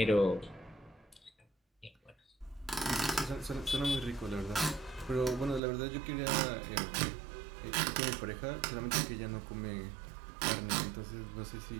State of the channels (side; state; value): left; drops out; at 5.6 s